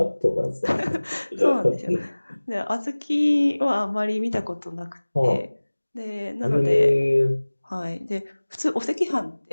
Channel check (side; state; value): both; inverted; correlation -1.00